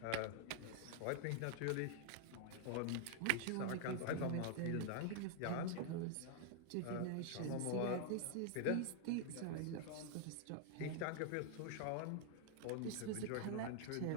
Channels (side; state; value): both; different; correlation 0.00